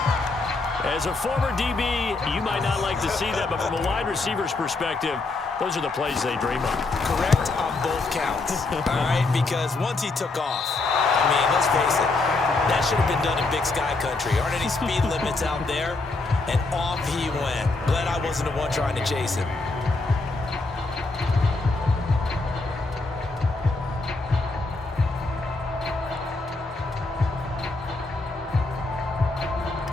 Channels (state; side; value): quieter; right; 3.4 dB